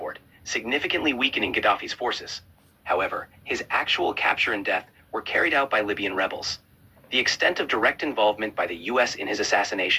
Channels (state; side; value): identical; both; correlation 1.00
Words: significantly weakening Gaddafi's forces. However, his actual capture and death were carried out by Libyan rebels. The extent of direct involvement by the US in his